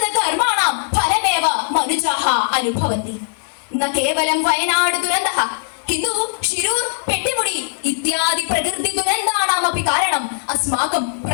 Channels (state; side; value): silent; right; digital silence